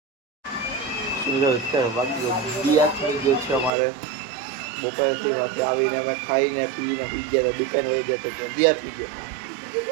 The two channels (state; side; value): drops out; left; at 3.7 s